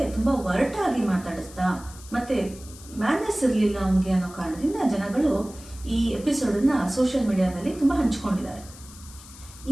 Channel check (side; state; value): left; noise; hiss, 19 dB below the sound